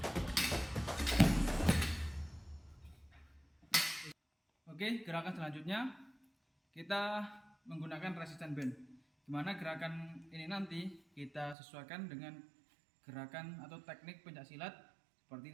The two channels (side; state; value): left; drops out; at 11.6 s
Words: Oke, gerakan selanjutnya kita menggunakan resistance band, dimana gerakan ini nanti kita sesuaikan dengan gerakan atau teknik pencaksilat